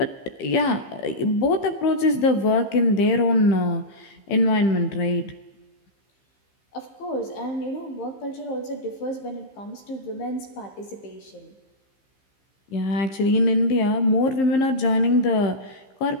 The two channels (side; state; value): right; late; 15 ms